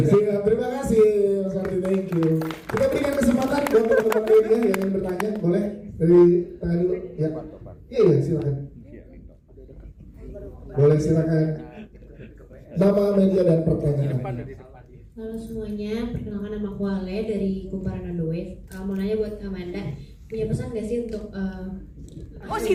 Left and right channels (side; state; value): both; identical; correlation 1.00